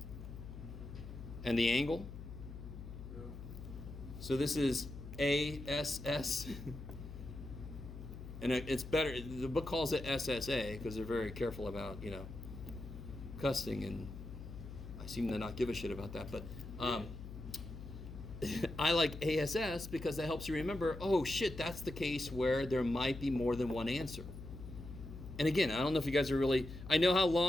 And the angle? Yeah. So this is ASS. And it's better, the book calls it SSA because they're very careful about, cussing, and I seem to not give a shit about that, but I like ASS because that helps you remember, oh shit, that's the case where there might be more than one answer. And again, I don't know if you guys are really, I know how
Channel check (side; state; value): left; noise; hum, 11 dB below the sound